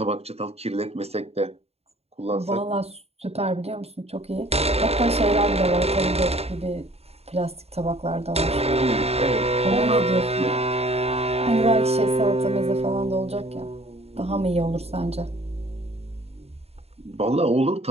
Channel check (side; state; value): left; late; 0.30 ms